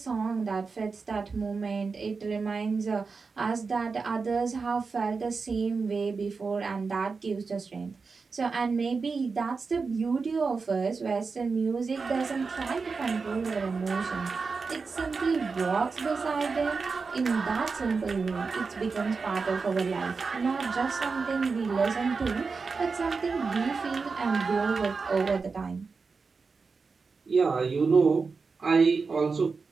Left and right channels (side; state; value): left; quieter; 4.7 dB